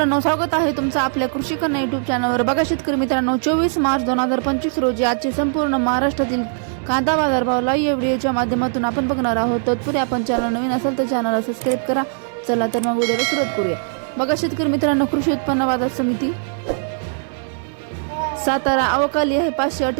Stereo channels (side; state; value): left; silent; digital silence